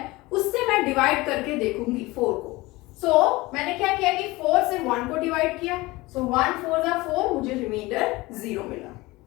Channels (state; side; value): quieter; right; 21.1 dB